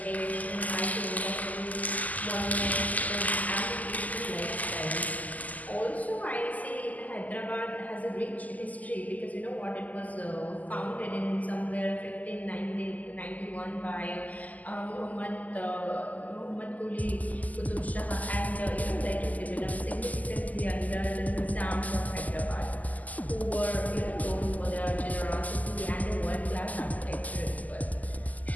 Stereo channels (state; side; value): late; right; 0.078 ms